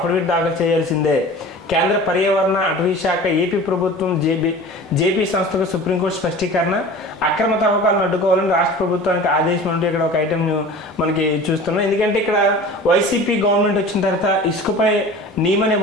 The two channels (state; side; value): normal; both; correlation 0.39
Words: దాఖలు చేయాల్సిందే. కేంద్ర పర్యావరణ అటవీ శాఖ ఏపీ ప్రభుత్వం జేపీ సంస్థకు సుప్రీంకోర్టు స్పష్టీకరణ. అక్రమ తవ్వకాలను అడ్డుకోవాలని రాష్ట్ర ప్రభుత్వానికి ఆదేశం అంటూ ఇక్కడ ఒక ఐటెం మనకి చూస్తున్నాం. ఎందుకంటే ఇక్కడ వైసీపీ గవర్నమెంట్ వచ్చిన తర్వాత ఇసుకపై నియమ